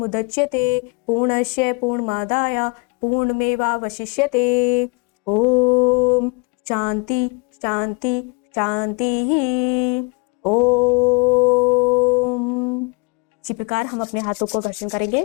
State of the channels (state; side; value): quieter; right; 31.8 dB